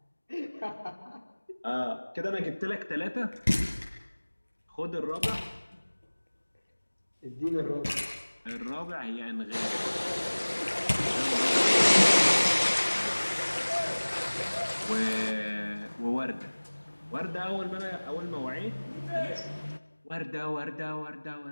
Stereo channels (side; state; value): both; inverted; correlation -1.00